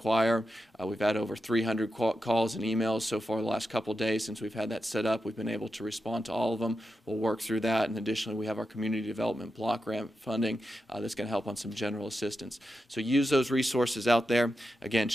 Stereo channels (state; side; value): normal; both; correlation 0.89